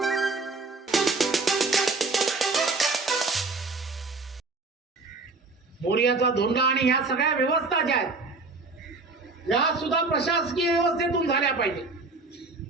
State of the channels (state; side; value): quieter; left; 3.7 dB